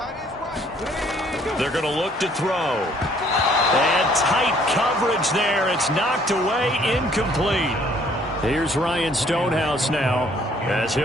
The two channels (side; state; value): both; normal; correlation 0.61